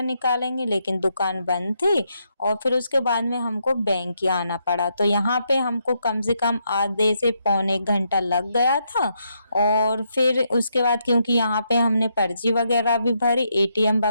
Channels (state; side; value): inverted; both; correlation -0.79